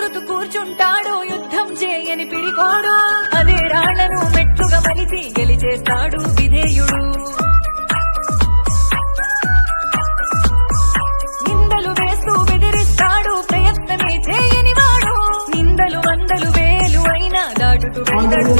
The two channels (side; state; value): both; inverted; correlation -1.00